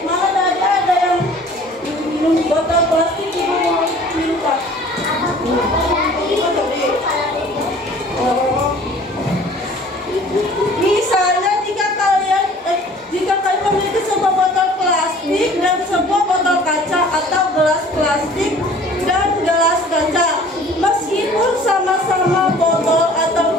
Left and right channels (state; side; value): normal; both; correlation 0.49